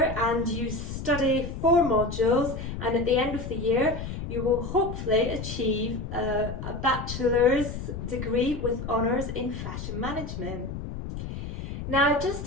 and you study 4 modules, and at the end of the year you will hopefully achieve a bachelor's degree with honours in fashion management. Now, just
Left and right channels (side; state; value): left; noise; rumble, 7 dB below the sound